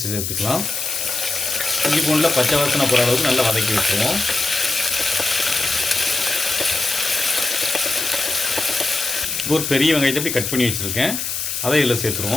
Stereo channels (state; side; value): noise; left; hiss, 3 dB below the sound